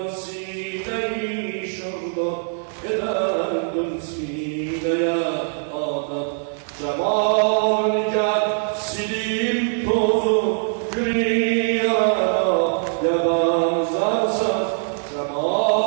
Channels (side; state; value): left; silent; 64 dB below the other